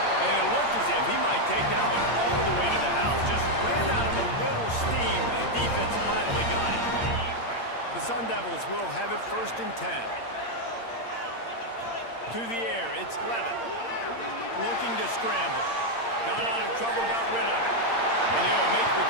And it looked as if he might take that one all the way to the house. Just ran out of a little steam. The defense finally got it. The Sun Devils will have it 1st and 10. To the air, it's Levin. Looking to scramble. Got out of trouble, got rid of it. And he'll make the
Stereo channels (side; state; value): right; late; 8.7 ms